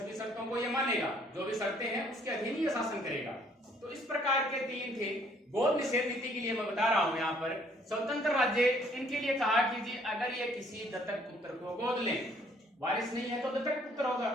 शर्तों को ये मानेगा, जो भी शर्तें हैं उसके अधीन ही शासन करेगा। तो इस प्रकार के 3 थे। गोद निषेध नीति के लिए मैं बता रहा हूं यहाँ पर स्वतंत्र राज्य, इनके लिए कहा कि जी अगर ये किसी दत्तक पुत्र को गोद लें, वारिस नहीं है तो दत्तक पुत्र होगा,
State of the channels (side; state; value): both; normal; correlation 0.62